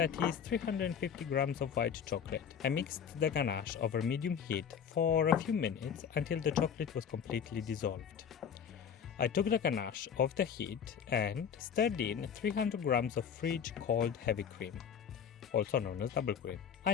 is 350 grams of white chocolate. I mixed the ganache over medium heat for a few minutes until the chocolate was completely dissolved. I took the ganache off the heat and stirred in 300 grams of fridge cold heavy cream, also known as double cream. I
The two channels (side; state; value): right; quieter; 7.7 dB